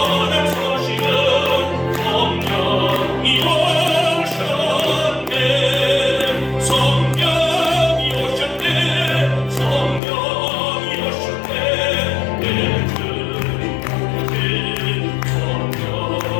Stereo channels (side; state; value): right; drops out; at 10.0 s